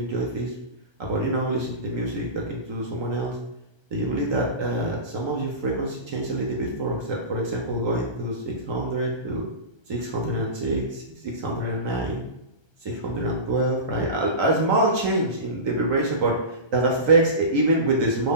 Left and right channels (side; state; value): left; late; 1.3 ms